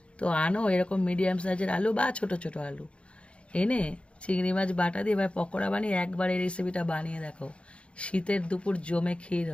তো আনো এরকম মিডিয়াম সাইজের আলু বা ছোট ছোট আলু এনে চিংড়ি মাছ বাটা দিয়ে এবার পকোড়া বানিয়ে একবার এই রেসিপিটা বানিয়ে দেখো, শীতের দুপুর জমে ক্ষীর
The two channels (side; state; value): right; late; 0.059 ms